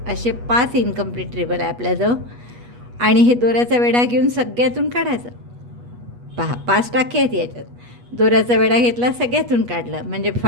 असे 5 इनकम्प्लीट ट्रिबल आहे आपल्याजवळ, आणि हे दोऱ्याचा वेढा घेऊन सगळ्यातून काढायचं। पहा 5 टाके आहेत याच्यात, दोऱ्याचा वेढा घेतला, सगळ्यातून काढलं, म्हणजे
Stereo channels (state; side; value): late; left; 8.3 ms